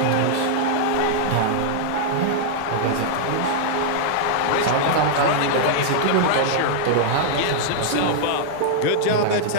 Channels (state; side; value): different; both; correlation -0.01